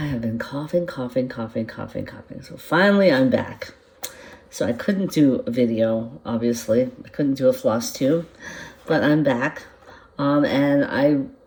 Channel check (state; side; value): identical; both; correlation 1.00